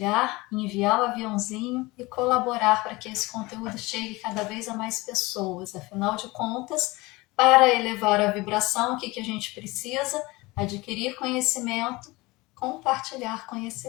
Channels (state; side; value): quieter; right; 22.2 dB